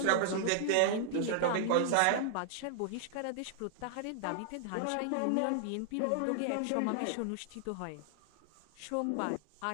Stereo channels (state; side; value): different; both; correlation -0.01